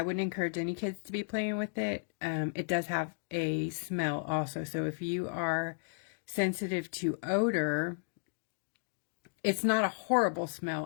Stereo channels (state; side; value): silent; right; digital silence